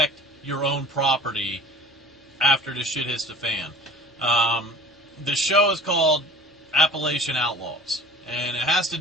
your own property after the shit hits the fan. The show is called Appalachian Outlaws, and it has to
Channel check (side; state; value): both; normal; correlation 0.44